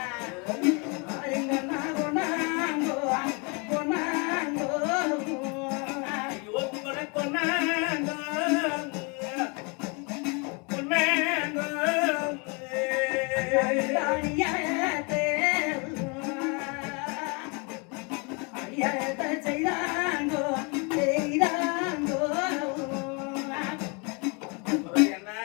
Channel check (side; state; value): right; quieter; 32.3 dB